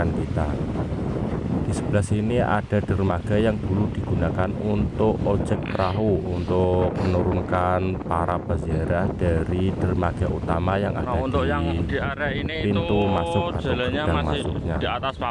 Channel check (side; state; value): both; identical; correlation 1.00